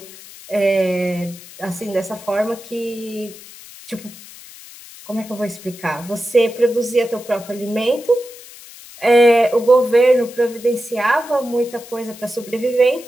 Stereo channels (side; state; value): left; noise; hiss, 18 dB below the sound